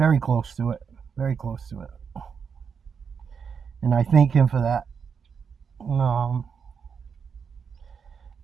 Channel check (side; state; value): left; quieter; 6.4 dB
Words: close to it. And I thank him for that.